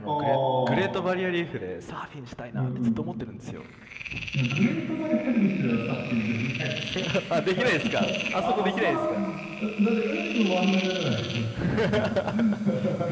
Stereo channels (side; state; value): both; identical; correlation 1.00